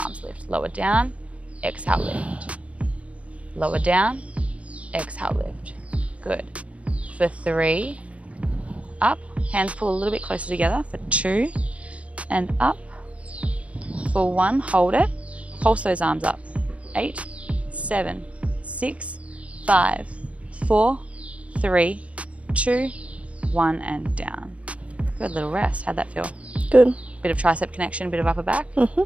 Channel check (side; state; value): left; late; 0.064 ms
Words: lift. Lower down, exhale, lift. lower down, exhale, lift. Good. For 3, up, hands pull a little bit closer together. For 2, and up. For 1, hold it, pulse those arms up. 8, 7, 6, 5, 4, 3, 2, 1, and down. Good, little rest. How'd that feel? Good. Bit of tricep connection, bit of upper back.